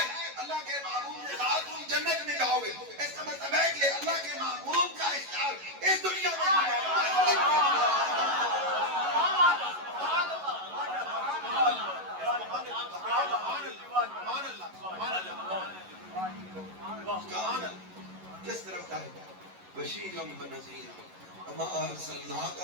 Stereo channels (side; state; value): left; late; 11 ms